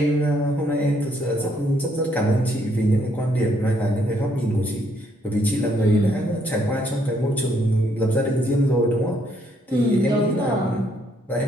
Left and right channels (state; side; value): normal; both; correlation 0.70